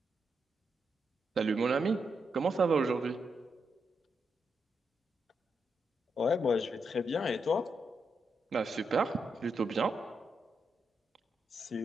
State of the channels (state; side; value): normal; both; correlation 0.83